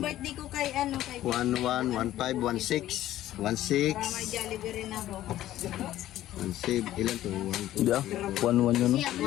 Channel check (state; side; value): quieter; right; 13.7 dB